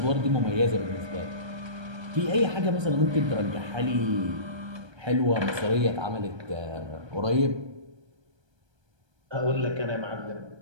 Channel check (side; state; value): left; late; 1.3 ms